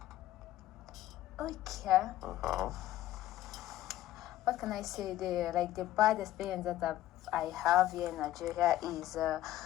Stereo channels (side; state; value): right; quieter; 13.9 dB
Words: Okay. What can I say? The bad experience that I have here in Nigeria is